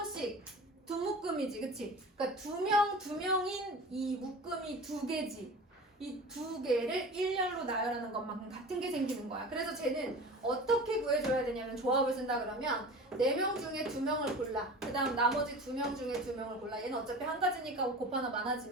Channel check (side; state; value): both; normal; correlation 0.36